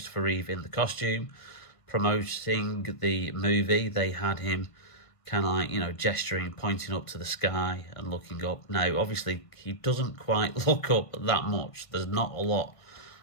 Reeve in the costume, promoting the movie. They had him kind of like, gesturing, pointing up to the sky and looking up. Now, obviously, he doesn't quite look up that much. There's not a lot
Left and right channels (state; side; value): late; right; 1.6 ms